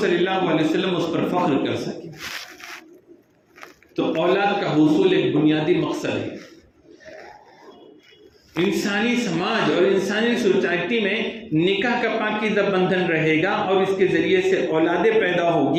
صلی اللہ علیہ وسلم اس پر فخر کر سکے۔ تو اولاد کا حصول ایک بنیادی مقصد ہے۔ انسانی سماج اور انسانی سوسائٹی میں نکاح کا پاکیزہ بندھن رہے گا اور اس کے ذریعے سے اولادیں پیدا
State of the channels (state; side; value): identical; both; correlation 1.00